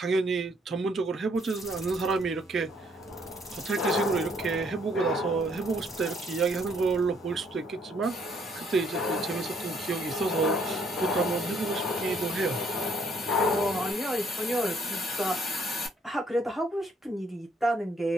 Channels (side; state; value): both; normal; correlation 0.66